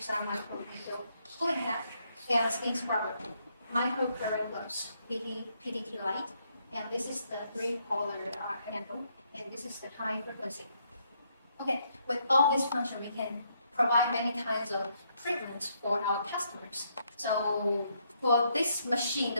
microneedle, cooling hat, and skin scrubber, microcurrent gloves, PDT light, and this is the 3-polar handle, and this is the high frequency. Okay, with all this function, we can provide many kinds of treatments for our customers. So for this machine,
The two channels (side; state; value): both; inverted; correlation -0.74